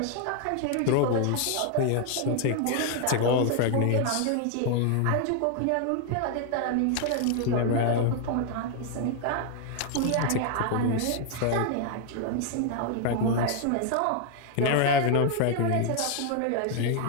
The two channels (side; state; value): both; different; correlation 0.00